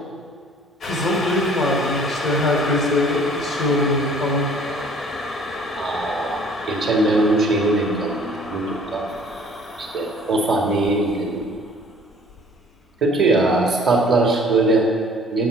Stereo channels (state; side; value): normal; both; correlation 0.54